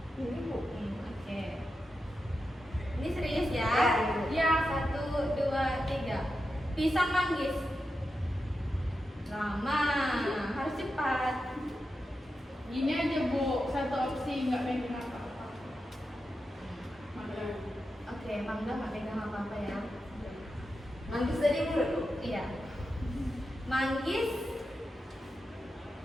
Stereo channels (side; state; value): both; normal; correlation 0.89